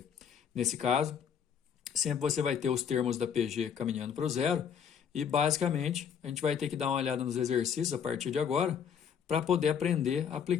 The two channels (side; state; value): right; quieter; 7.7 dB